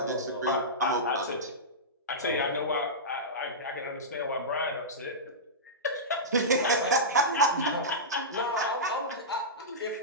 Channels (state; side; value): normal; both; correlation -0.15